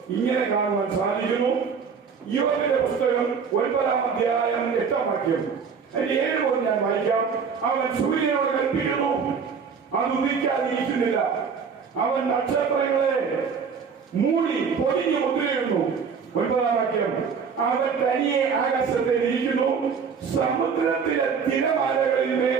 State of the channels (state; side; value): quieter; left; 6.1 dB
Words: ഇങ്ങനെ കാണുവാൻ സാധിക്കുന്നു. യോബിന്റെ പുസ്തകം 9-ാം അധ്യായം 8-ാം വാക്യം അതിന്റെ 7 മുതൽ ഞാൻ വായിക്കാം. അവൻ സൂര്യനോട് കൽപ്പിക്കുന്നു, അത് ഉദിക്കാതിരിക്കുന്നില്ല. അവൻ നക്ഷത്രങ്ങളെ മൂടി പൊതിഞ്ഞു മുദ്രയിടുന്നു. 9-ാം വാക്യം, അവൻ തനിയെ ആകാശത്തിൽ ഇരിക്കുന്നു, സമുദ്രത്തിലെ തിരമാലകളിൽ